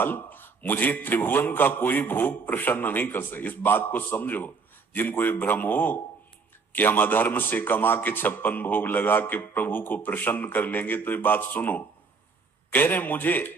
मुझे त्रिभुवन का कोई भोग प्रसन्न नहीं कर सकता। इस बात को समझो। जिनको ये भ्रम हो कि हम अधर्म से कमा के 56 भोग लगा के प्रभु को प्रसन्न कर लेंगे, तो ये बात सुनो। कह रहे मुझे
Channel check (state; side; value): quieter; left; 4.8 dB